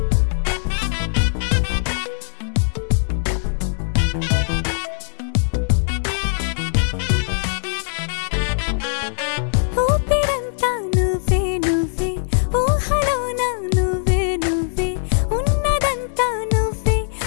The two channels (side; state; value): right; silent; digital silence